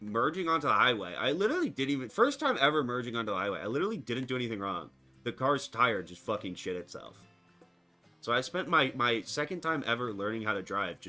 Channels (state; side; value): identical; both; correlation 1.00